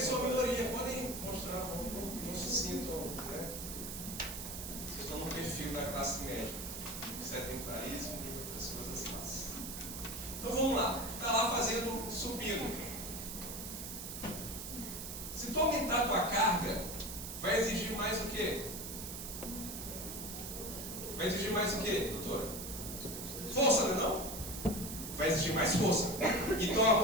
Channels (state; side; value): noise; right; hiss, 7 dB below the sound